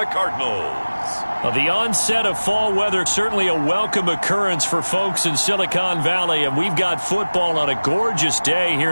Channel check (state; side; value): inverted; both; correlation -1.00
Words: Cardinals. Well, the onset of fall weather, certainly a welcome occurrence for folks in Silicon Valley, and we've got football on a gorgeous day here